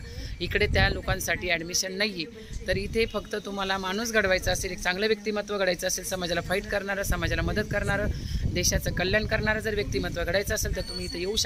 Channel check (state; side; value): identical; both; correlation 1.00